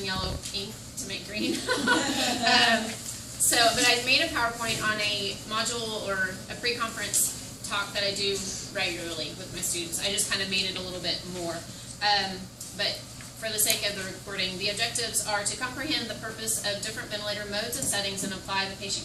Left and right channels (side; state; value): both; identical; correlation 1.00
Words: yellow ink to make green. But I made a PowerPoint on a module or a pre-conference talk that I do regularly with my students. I just kind of made it a little bit more. But for the sake of the recording, the objectives are to comprehend the purpose of different ventilator modes and settings and apply the